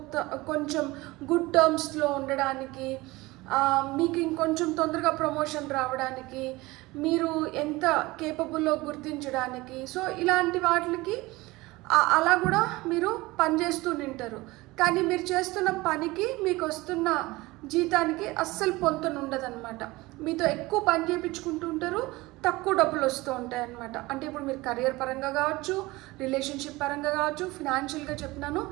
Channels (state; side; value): quieter; left; 20.8 dB